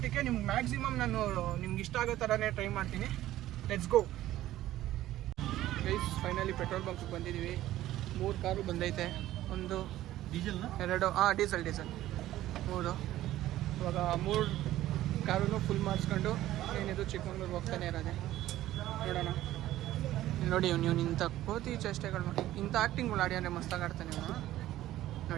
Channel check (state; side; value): quieter; left; 14.4 dB